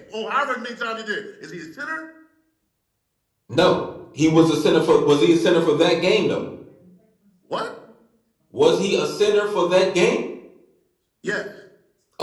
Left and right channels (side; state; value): both; identical; correlation 1.00